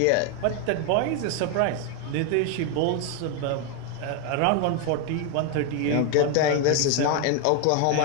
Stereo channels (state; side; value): different; both; correlation 0.01